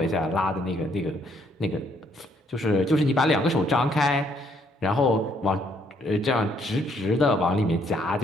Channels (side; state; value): both; normal; correlation 0.69